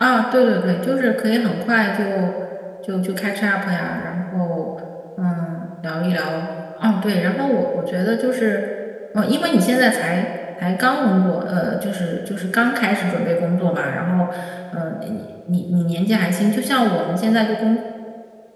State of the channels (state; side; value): identical; both; correlation 1.00